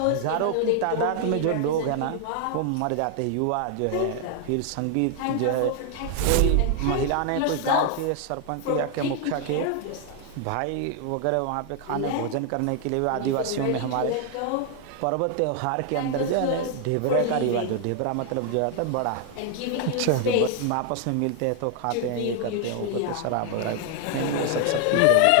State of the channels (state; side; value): different; both; correlation 0.00